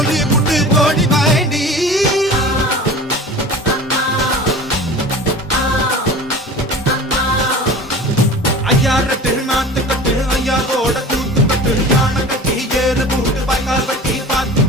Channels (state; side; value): normal; both; correlation 0.38